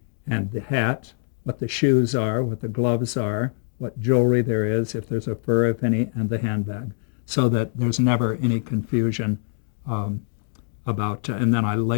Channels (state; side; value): silent; right; 63 dB below the other